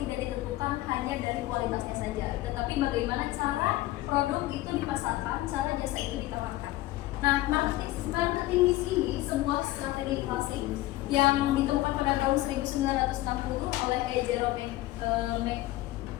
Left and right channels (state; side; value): quieter; right; 16.9 dB